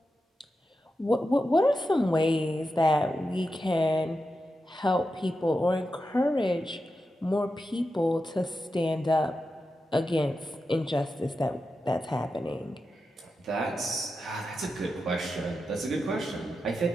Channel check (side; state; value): both; normal; correlation 0.89